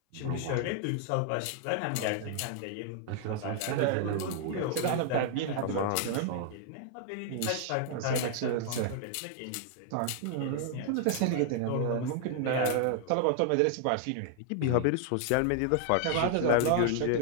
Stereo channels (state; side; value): different; both; correlation 0.00